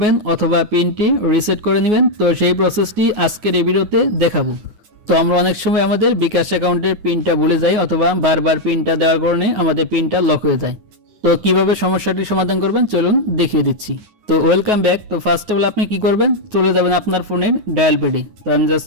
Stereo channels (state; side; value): late; left; 9.8 ms